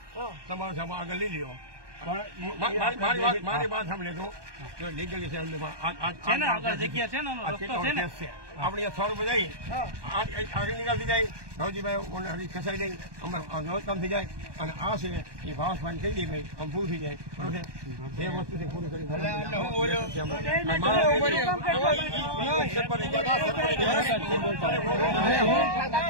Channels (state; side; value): late; left; 1.2 ms